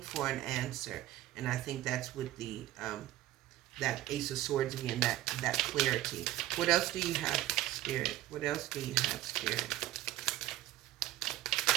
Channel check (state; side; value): quieter; left; 14.9 dB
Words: for an answer. And I think that's with the that Ace of Swords again, that clarity. What else do you have, Spirit? What else do you have, Spirit?